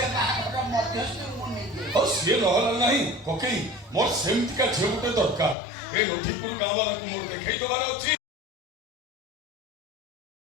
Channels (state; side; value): drops out; right; at 5.6 s